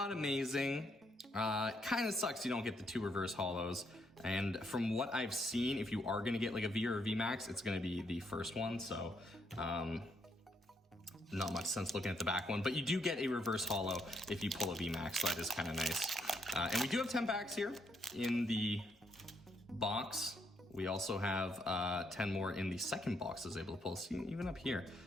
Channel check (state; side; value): normal; both; correlation 0.74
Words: amazing. Kind of sucks you don't get the 2 reverse holos. And from what I've seen, if you are gonna get like a V or a V Max, it's gonna be the first one. So not much sense looking at the back one, but you do get a reverse holo if you pull a V Max, so that is kind of nice. And we do have 10 packs here in the box. We also have 10 more in the second box I was able to pull. See, even up here,